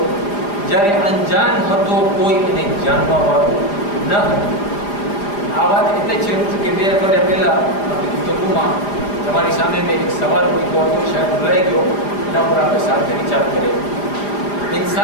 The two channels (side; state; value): right; late; 4.9 ms